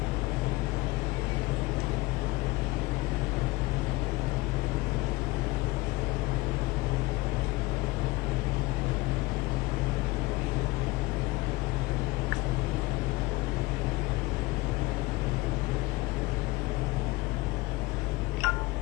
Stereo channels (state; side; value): quieter; right; 21.5 dB